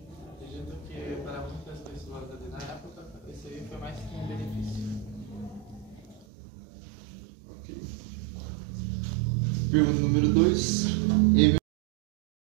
Acredito que para muitas pessoas ali na época, esse aí foi mais que um benefício. Pergunta número 2.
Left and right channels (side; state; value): left; drops out; at 6.2 s